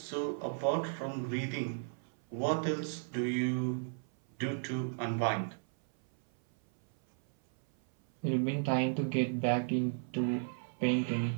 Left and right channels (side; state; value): left; silent; 55 dB below the other